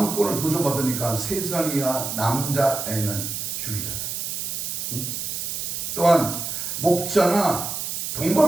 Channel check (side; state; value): right; noise; hiss, 4 dB below the sound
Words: 도전받으니까 3살 이하 남자애는 죽이잖아요. 또한 목자나